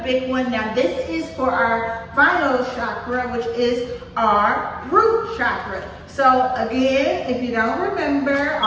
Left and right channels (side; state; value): both; identical; correlation 1.00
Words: big one. Now this is for our final chakra, which is our root chakra. So again, if you don't remember,